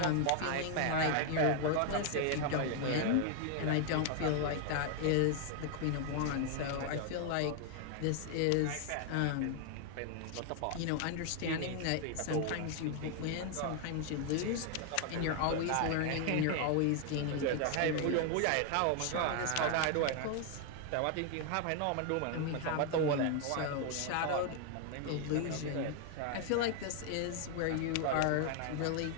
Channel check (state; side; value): different; both; correlation 0.00